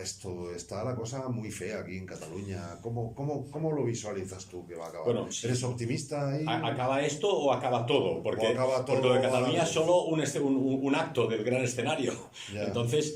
esto? Está la cosa muy fea aquí en Cataluña. ¿Cómo lo visualizas tú que va a acabar? Bueno, ¿eres optimista ahí? ¿Acaba esto o acaba todo? Porque lo de Cataluña es solo un acto del gran escenario. Yeah.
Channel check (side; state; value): both; identical; correlation 1.00